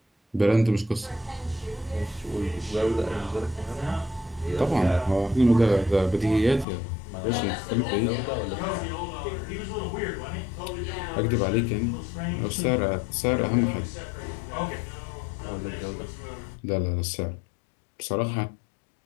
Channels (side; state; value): right; drops out; at 6.7 s